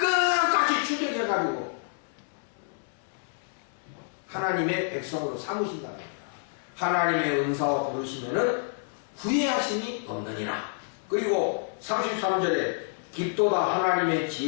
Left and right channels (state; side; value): silent; right; digital silence